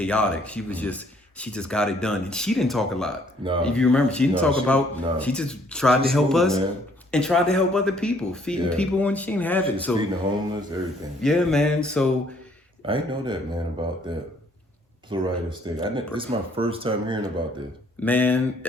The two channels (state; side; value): normal; both; correlation 0.64